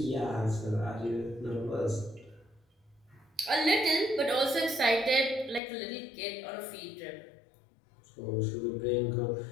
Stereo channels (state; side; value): drops out; right; at 5.6 s